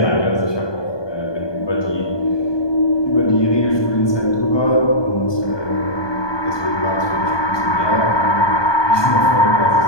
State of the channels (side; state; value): right; late; 1.2 ms